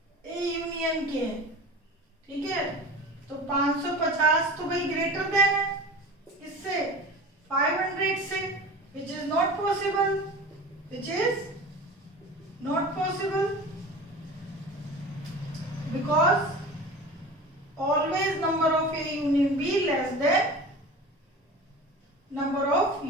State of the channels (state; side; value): normal; both; correlation 0.35